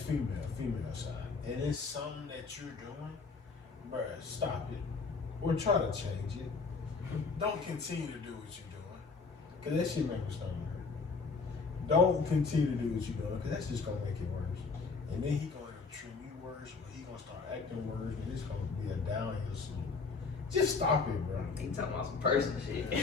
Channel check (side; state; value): right; quieter; 4.5 dB